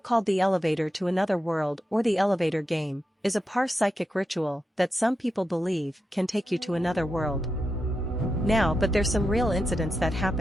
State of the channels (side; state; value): both; normal; correlation 0.88